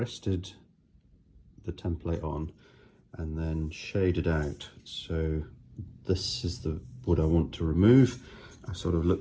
the template on and then shaded out. So this is the wood I want to remove. I sort of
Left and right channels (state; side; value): identical; both; correlation 1.00